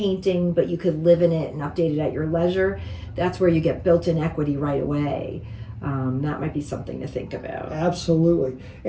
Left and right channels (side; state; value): both; identical; correlation 1.00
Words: but you could live in it and update it at your leisure. That's where you get built-in equity right away. That might be something to think about. Absolutely.